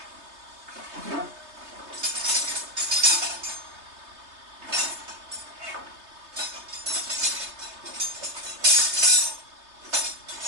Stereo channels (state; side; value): late; left; 3.3 ms